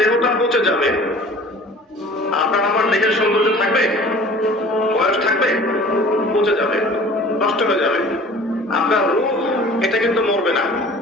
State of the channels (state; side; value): normal; both; correlation 0.46